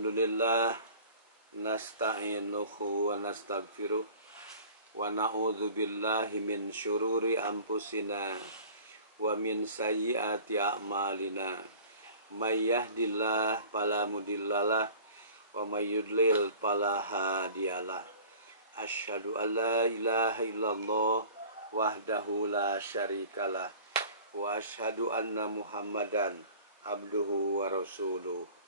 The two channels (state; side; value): inverted; both; correlation -0.44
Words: nasta'inuhu wa nastaghfiruh wa na'udzu billahi min syururi anfusina wa min sayyiati a'malina. May yahdihillahu fala mudhillalah wa may yudlil fala hadiyalah. Asyhadu an la ilaha illallah wahdahu la syarikalah wa asyhadu anna Muhammadan abduhu wa rasuluh,